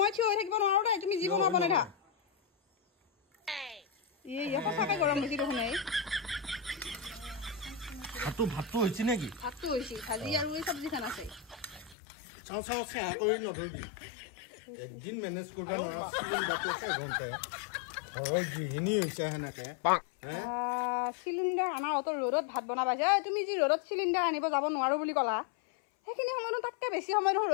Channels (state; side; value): drops out; right; at 12.0 s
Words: থিয় হৈ থাকিব নোৱাৰো দে তুমি যি বনোৱা বনাই থাক সঁচাকে গৰম হৈছে দেখোন এই ভাতটো হৈছে নেকি ভাতটো হৈছে ভাজি আৰু এই চব্জিখন আছে চাওঁ চাহ কৰি নধৰিবি একদিন মেনেজ কৰবা নৰা চিলিণ্ডাৰটো এঘণ্টাই ঘৰৰ গৃহিণী হৈছে সেনেকে চিলিণ্ডাৰ আনাৰ অত ৰ'দত ভাত বনাবা তুমি যি ৰ'দত চিলিণ্ডাৰ আনিব যাব নোৱাৰো বুলি ক'লা সেইখিনি সময়ত তাতকে বেছি সময় নহয়